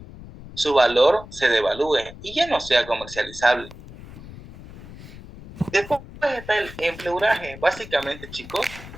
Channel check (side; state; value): left; noise; rumble, 16 dB below the sound